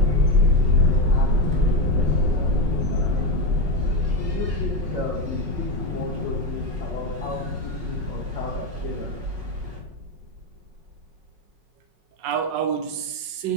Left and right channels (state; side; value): late; left; 5.5 ms